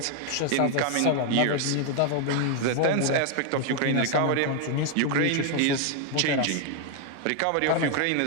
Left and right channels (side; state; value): both; different; correlation 0.00